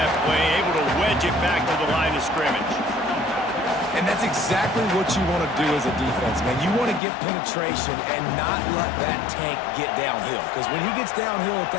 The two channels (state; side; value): drops out; right; at 7.0 s